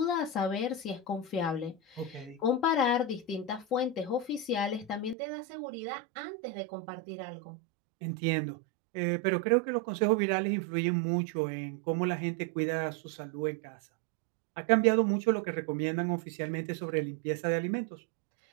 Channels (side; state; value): left; drops out; at 5.2 s